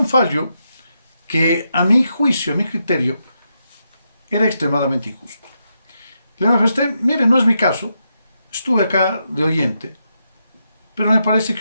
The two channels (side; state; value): both; inverted; correlation -0.83